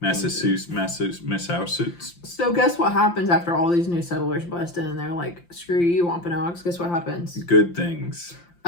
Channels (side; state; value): right; late; 5.8 ms